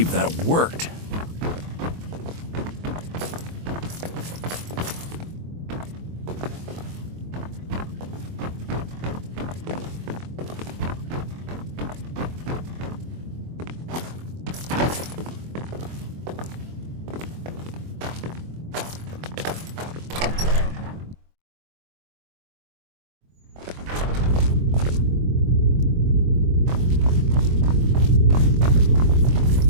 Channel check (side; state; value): left; late; 23 ms